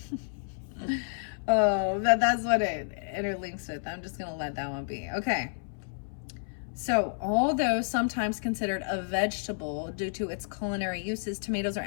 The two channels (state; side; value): silent; right; 58 dB below the other